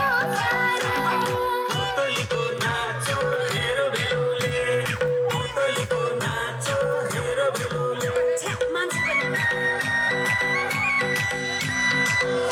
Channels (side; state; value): both; identical; correlation 1.00